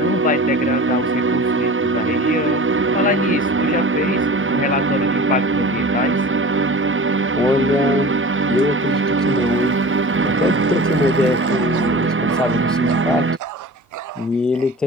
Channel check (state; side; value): normal; both; correlation 0.37